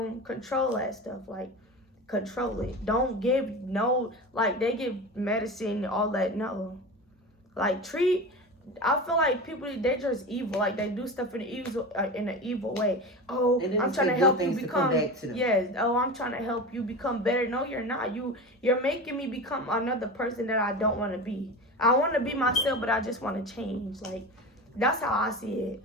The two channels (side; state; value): both; normal; correlation 0.28